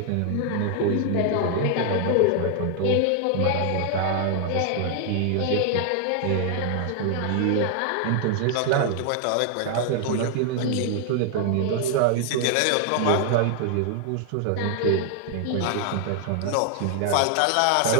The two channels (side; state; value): both; different; correlation 0.00